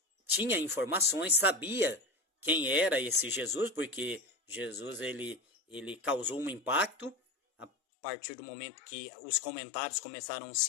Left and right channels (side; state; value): right; drops out; at 7.7 s